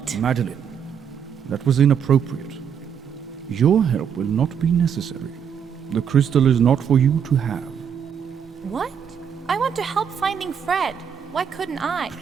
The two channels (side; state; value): left; quieter; 7.7 dB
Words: Madeline, that was inappropriate. Your help will not be necessary. The crystal is not for you to have. What? I want to help finding Fred. Why couldn't I?